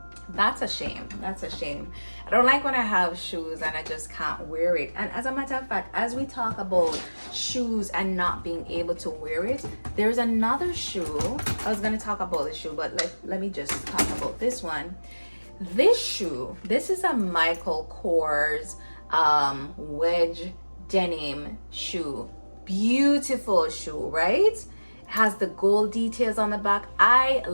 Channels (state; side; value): inverted; both; correlation -1.00